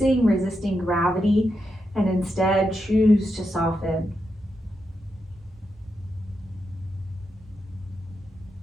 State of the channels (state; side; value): normal; both; correlation 0.85